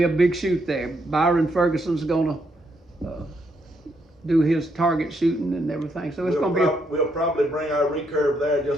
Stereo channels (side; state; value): both; normal; correlation 0.76